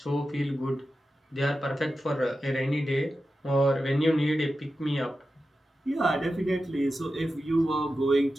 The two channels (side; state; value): both; normal; correlation 0.92